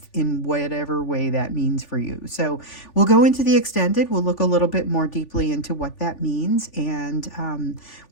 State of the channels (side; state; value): right; late; 3.4 ms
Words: in whatever way that means for you. So we'll go into the extended, we'll look a little bit more deeply into what that means, and